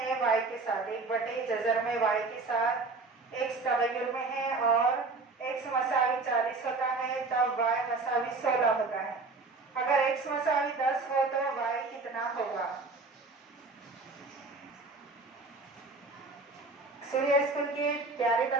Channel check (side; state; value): left; quieter; 3.7 dB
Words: वाई के साथ, एक बटे जज़र में वाई के साथ एक्स तगय्युर में है और एक्स मसावी 40 होता है तब वाई मसावी 16 होता है। अगर एक्स मसावी 10 हो तो वाई कितना होगा? सूर्य स्कूल के प्यारे